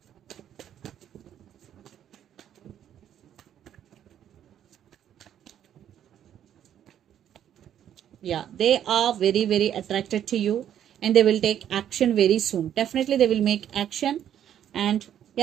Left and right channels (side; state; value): left; quieter; 10.2 dB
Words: Yeah, they are very, very attracted to you, and they will take action very soon. Definitely they will make action. And